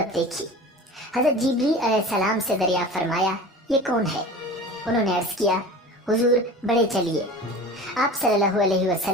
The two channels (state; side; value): normal; both; correlation 0.37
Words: دیکھی۔ حضرت جبریل علیہ السلام سے دریافت فرمایا، یہ کون ہے؟ انہوں نے عرض کیا، حضور بڑھے چلیے۔ آپ صلی اللہ علیہ